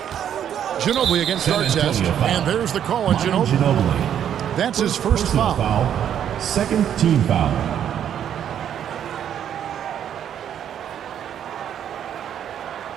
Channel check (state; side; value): quieter; left; 9.6 dB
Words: Ginobili against Artest, and there's the call on Ginobili. That's his first foul. Second team foul.